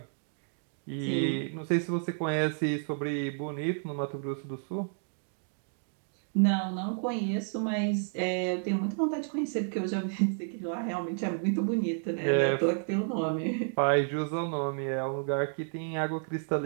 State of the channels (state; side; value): silent; left; digital silence